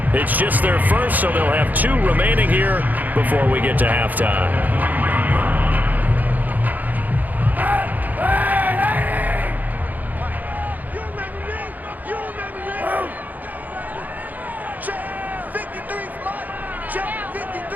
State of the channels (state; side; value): late; left; 0.082 ms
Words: It's just their first, so they'll have 2 remaining here before we get to halftime.